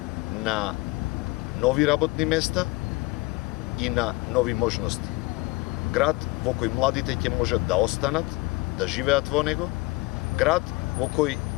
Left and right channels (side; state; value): right; quieter; 23.0 dB